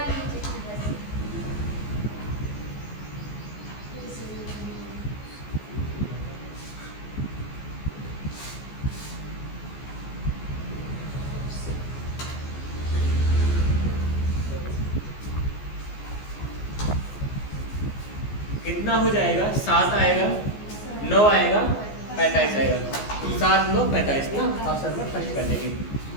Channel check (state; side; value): late; right; 14 ms